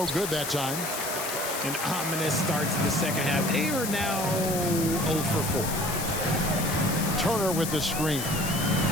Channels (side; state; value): left; noise; hiss, 5 dB below the sound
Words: good that time. An ominous start to the second half. They are now 0 for 4. Turner with the screen.